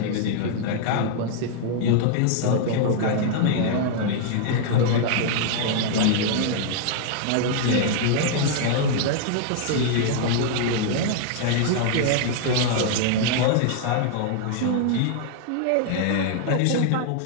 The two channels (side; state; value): both; different; correlation -0.01